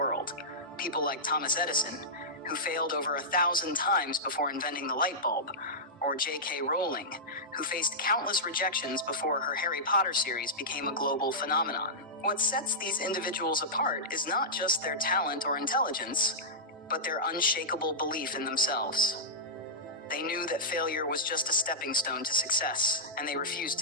People like Thomas Edison, who failed over 1,000 times before inventing the light bulb, or J.K. Rowling, who faced countless rejections before her Harry Potter series became a global phenomenon. What sets these individuals apart is not just their talent or intelligence, but their unshakable belief in themselves. They knew that failure was just a stepping stone to success, and they refused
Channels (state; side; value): normal; both; correlation -0.13